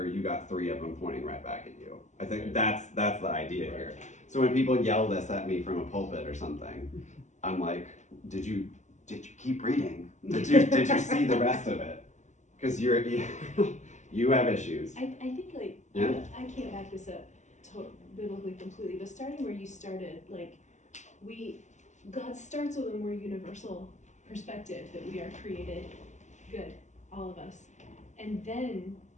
you got 3 of them pointing right back at you. I think that's the idea here. So when people yell this at me from a pulpit or something, I'm like, did you keep reading? Did you see the rest of it? Because you have issues. I think Yeah. I can't back this up biblically completely, but starting where you started, God starts with a more universal perspective that we are created good, all of us, and then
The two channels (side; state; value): right; late; 0.34 ms